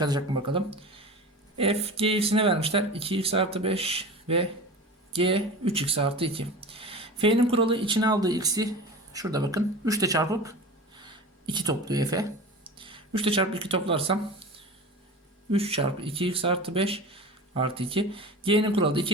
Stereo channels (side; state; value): both; normal; correlation 0.33